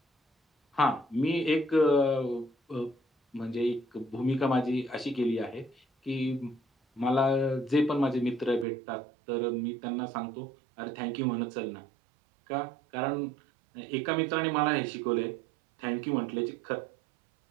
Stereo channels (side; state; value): left; drops out; at 8.7 s